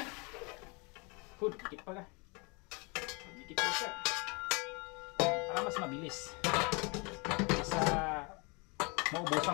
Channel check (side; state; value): right; quieter; 30.2 dB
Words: Good, dikit pa ka. Dikit po siya. Para mas mabilis. Sa